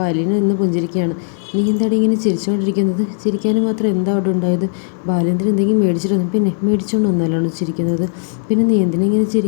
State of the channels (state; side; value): silent; right; digital silence